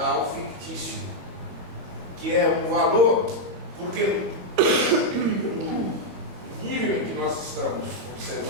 fictício, que é um valor, porque no nível em que nós estamos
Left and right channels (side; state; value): left; late; 22 ms